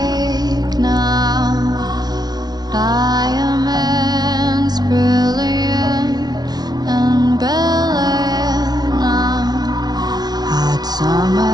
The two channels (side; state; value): left; late; 0.19 ms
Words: now. Diamonds brilliant and brilliant now. Hot